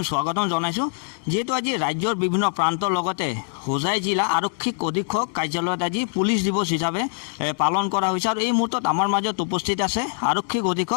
স্বাগতম জনাইছোঁ। যিহেতু আজি ৰাজ্যৰ বিভিন্ন প্ৰান্তৰ লগতে হোজাই জিলা আৰক্ষী অধীক্ষক কাৰ্যালয়ত আজি পুলিচ দিৱস হিচাপে পালন কৰা হৈছে আৰু এই মুহূৰ্তত আমাৰ মাজত উপস্থিত আছে আৰক্ষী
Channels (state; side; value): silent; right; digital silence